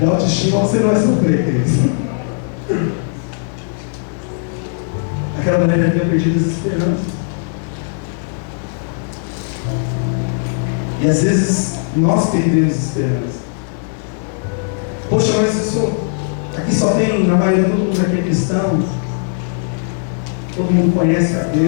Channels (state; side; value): silent; right; digital silence